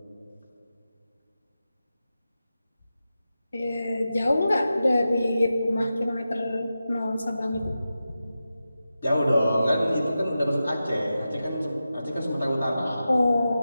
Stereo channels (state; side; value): inverted; both; correlation -0.92